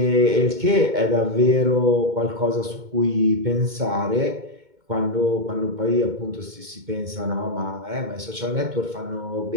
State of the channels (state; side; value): late; left; 2.2 ms